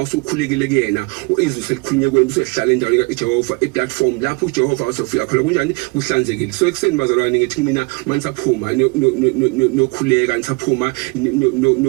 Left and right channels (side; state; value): left; quieter; 29.2 dB